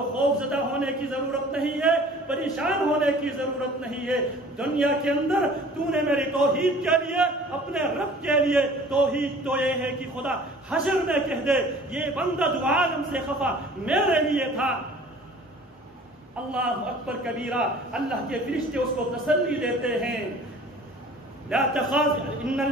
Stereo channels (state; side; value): normal; both; correlation 0.48